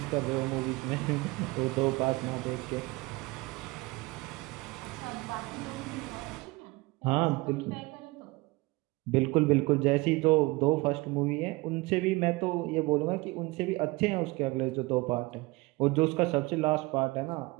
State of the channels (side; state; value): left; quieter; 23.0 dB